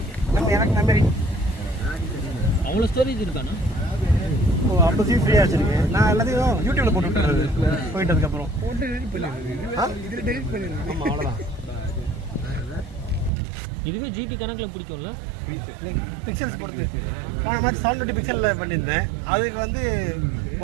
எனக்கு மெமரி அவ்வளோ ஸ்டோரேஜ் இருக்காண்ணா? ஓ 50 ஃப்ரீயாக வச்சிருக்கேன். நான் எல்லாத்தையும் யூடியூப்ல போட்டு விட்டுறது போயிட்டதுக்கப்புறம். ஆமாம் அவ்வளோதான். இதுவே ஜிபி கணக்கில் பிடிக்கும்ல? பிக்சல்ஸ் பொறுத்து போன மாதிரி 720 பிக்சலில் பண்ணியிருந்தேன். அதுக்கு வந்து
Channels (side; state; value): left; drops out; at 13.3 s